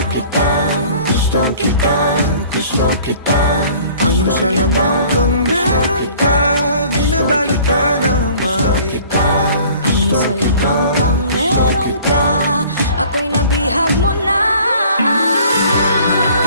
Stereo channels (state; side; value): inverted; both; correlation -0.51